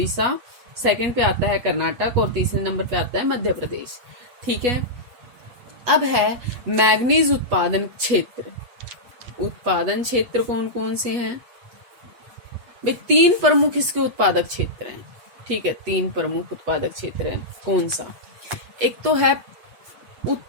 सेकंड पे आता है कर्नाटक और तीसरे नंबर पे आता है मध्य प्रदेश। ठीक है। अब है मैग्नीज उत्पादन क्षेत्र। उत्पादन क्षेत्र कौन कौन से हैं भाई? 3 प्रमुख इसके उत्पादक क्षेत्र हैं। ठीक है। 3 प्रमुख उत्पादक क्षेत्र हैं। कौन सा? एक तो है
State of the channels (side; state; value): left; late; 8.2 ms